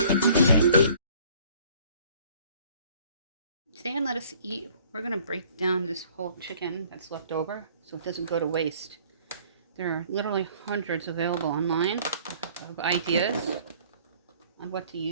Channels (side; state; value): both; inverted; correlation -0.55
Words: Today on Let Us Eat, we're going to break down this whole chicken that's left over so it doesn't go to waste. There are literally hundreds available online of ideas on what to